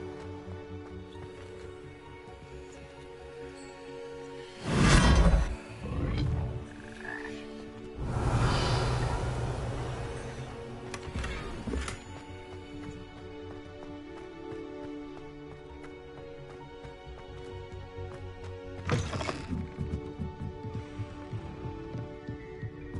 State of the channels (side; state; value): both; identical; correlation 1.00